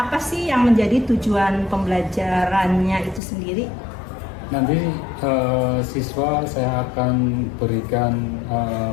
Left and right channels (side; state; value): right; drops out; at 3.2 s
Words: sih yang menjadi tujuan pembelajarannya itu sendiri? Nanti siswa saya akan berikan